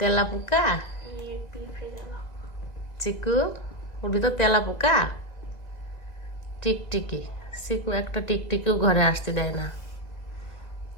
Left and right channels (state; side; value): late; right; 2.0 ms